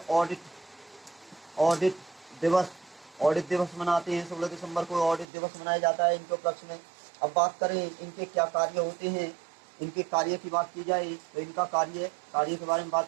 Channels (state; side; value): drops out; left; at 5.2 s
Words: ऑडिट दिवस मनाते हैं। 16 दिसंबर को ऑडिट दिवस मनाया जाता है इनके उपलक्ष्य में। अब बात करें इनके क्या कार्य होते हैं, इनके कार्य की बात की जाए तो इनका कार्य के बारे में